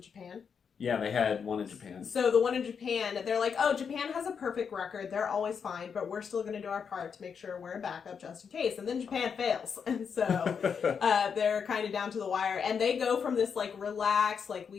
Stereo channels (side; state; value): right; quieter; 6.6 dB